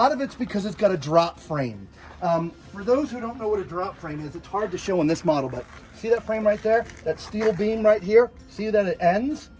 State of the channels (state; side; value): identical; both; correlation 1.00